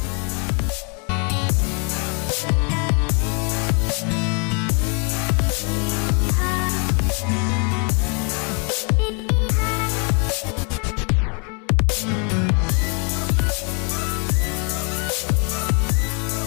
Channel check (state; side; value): quieter; right; 36.4 dB